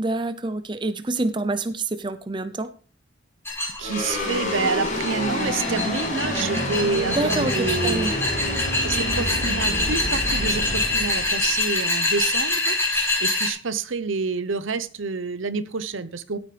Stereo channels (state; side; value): normal; both; correlation 0.05